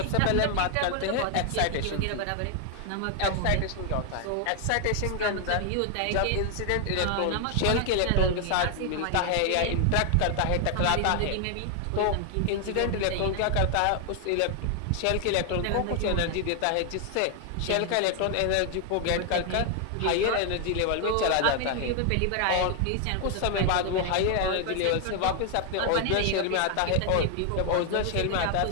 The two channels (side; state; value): both; different; correlation 0.00